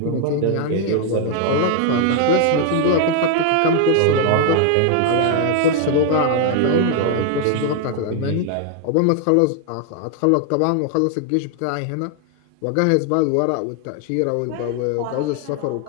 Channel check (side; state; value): both; different; correlation 0.00